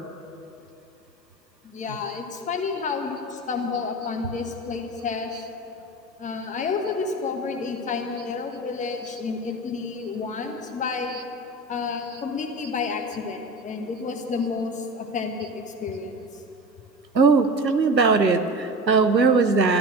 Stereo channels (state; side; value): normal; both; correlation 0.31